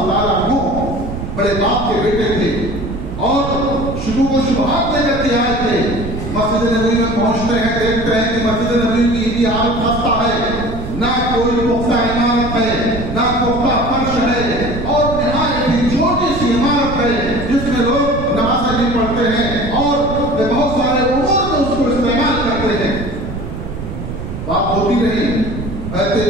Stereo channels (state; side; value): noise; right; rumble, 7 dB below the sound